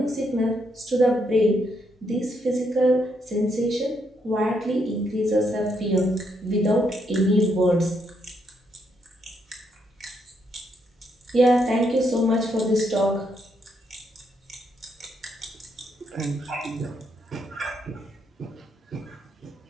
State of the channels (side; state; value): both; normal; correlation 0.76